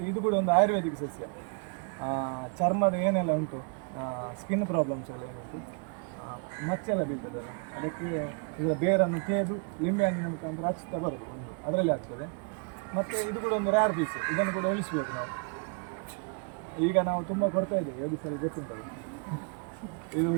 ಇದು ಕೂಡ ಒಂದು ಆಯುರ್ವೇದಿಕ್ ಸಸ್ಯ. ಚರ್ಮದ ಏನೆಲ್ಲ ಉಂಟು, ಸ್ಕಿನ್ ಪ್ರಾಬ್ಲಮ್ಸ್ ಎಲ್ಲ ಏನುಂಟು, ಮಚ್ಚೆಲ್ಲ ಬೀಳ್ತದಲ್ಲ, ಅದಕ್ಕೆ ಈಗ ಬೇರನ್ನು ತೇದು ಲಿಂಬೆ ಹಣ್ಣಿನ ಮುಖಾಂತರ ಹಚ್ತಾ ಬರ್ತದೆ, ಅದರಲ್ಲಿ ಆಗ್ತದೆ. ಮತ್ತು ಇದು ಕೂಡ ಒಂದು ರೇರ್ ಪೀಸ್, ಇದನ್ನು ಕೂಡ ಉಳಿಸ್ಬೇಕು ನಾವು. ಈಗ ನಾವು ತುಂಬ ಕೊಡ್ತಾ ಇದ್ದೇವೆ, ಒಡಿಸ್ಸಲ್ಲಿ ಗೊತ್ತಿಲ್ಲ, ಇದು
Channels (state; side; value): quieter; left; 37.5 dB